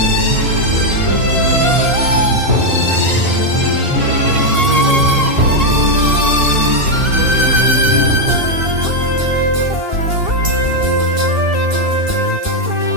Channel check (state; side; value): late; left; 2.7 ms